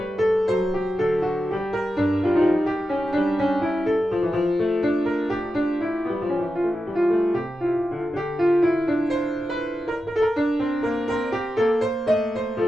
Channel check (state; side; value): normal; both; correlation 0.90